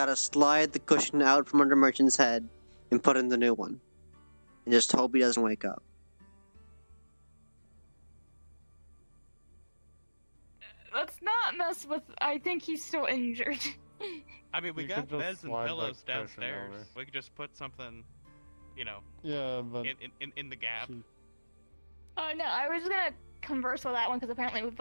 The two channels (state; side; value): inverted; both; correlation -1.00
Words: slide the cushion out from under Merchant's head and put in the new one. And just hope he doesn't wake up. Let's not mess with. I think he's still injured. I mean, we You got could just beds and slide that pillows cushion downstairs. over. We could just put something, you know, Yeah, but in the gap. Oh no, I was gonna converse with that one because apparently we've